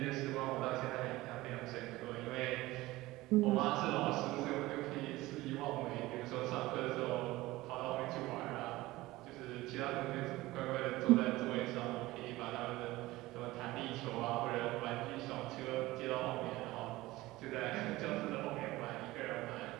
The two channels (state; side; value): quieter; left; 18.6 dB